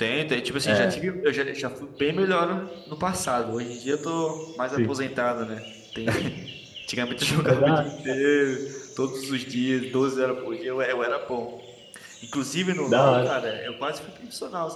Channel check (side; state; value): both; identical; correlation 1.00